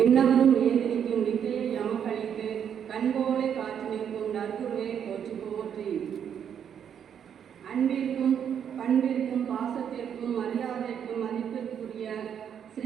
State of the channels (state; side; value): quieter; left; 8.4 dB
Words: ஏதிரிக்கும் வித்தையை எமக்களித்து கண்போலை காற்று நிற்கும் நற்குருவே போற்றி போற்றி. அன்பிற்கும் பண்பிற்கும் பாசத்திற்கும் மரியாதைக்கும் மதிப்பிற்குரிய